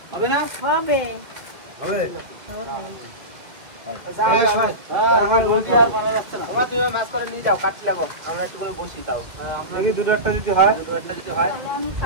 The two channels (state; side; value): late; left; 1.9 ms